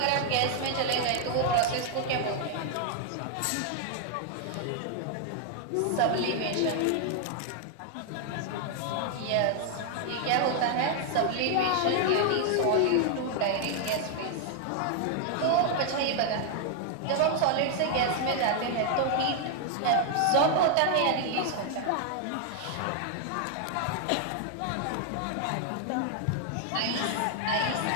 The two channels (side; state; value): both; different; correlation 0.00